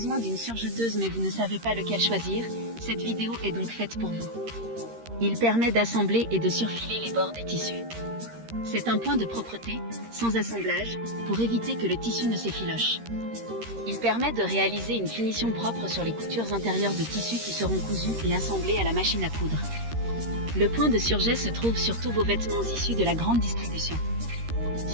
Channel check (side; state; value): left; late; 13 ms